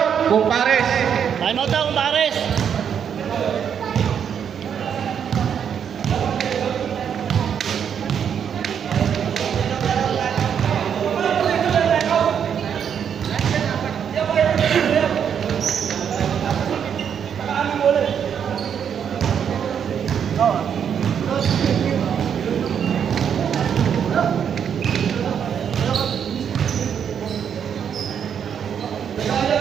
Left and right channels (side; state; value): left; quieter; 8.0 dB